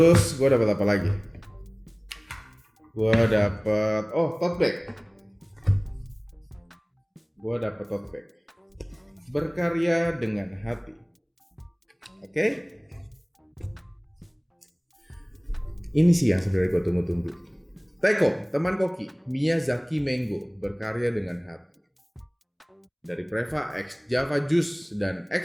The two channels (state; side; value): identical; both; correlation 1.00